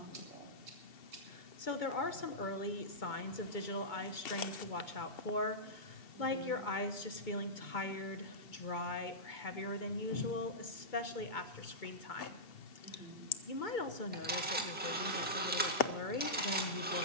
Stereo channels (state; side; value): normal; both; correlation -0.15